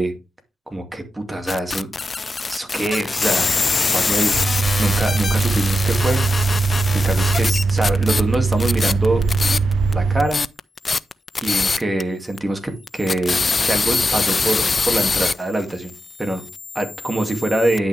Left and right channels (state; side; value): normal; both; correlation 0.88